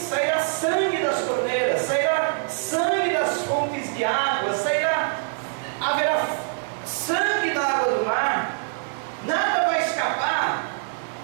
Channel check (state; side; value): silent; left; digital silence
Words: sangue das torneiras, sairá sangue das fontes de água, haverá sangue na água do mar, nada vai escapar.